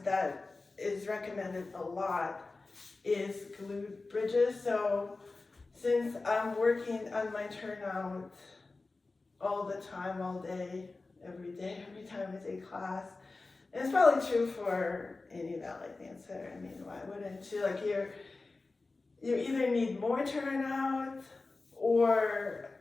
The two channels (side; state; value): right; quieter; 3.6 dB